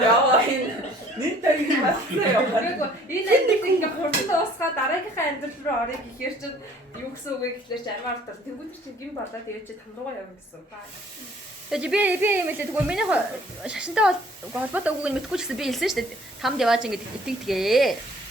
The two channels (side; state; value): both; normal; correlation 0.55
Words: Яа энэ нэг тань басна яа. Энэ амьдрал ингээ хурдан дуусгаад дараагийнхаа амьдрал руу орё гэхээр чинь юу гэсэн үг вэ гэхлээр чи амиа ортол тэгвэл чи гин болоо тэгээд чи тамруугаа явна гэсэн. Тэгээд би юм хэлээ тэгвэл миний шашинтай холбоотой үгийг мэдгүй ч гэсэн би хэлсэн шүү дээ. Тамд яваач ингэж итгэдгээ.